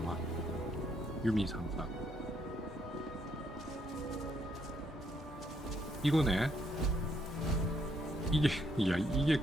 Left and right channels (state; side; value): normal; both; correlation 0.73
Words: 유미 상사. 이거네. 이게